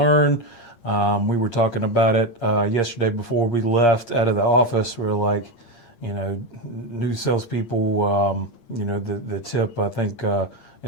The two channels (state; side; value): late; right; 8.6 ms